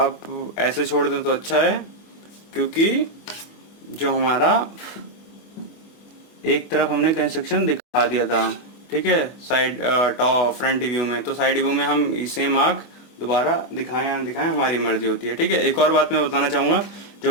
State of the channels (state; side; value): late; right; 25 ms